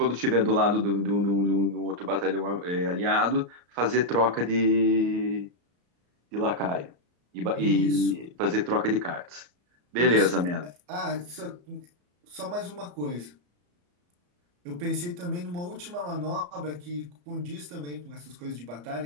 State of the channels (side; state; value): left; late; 34 ms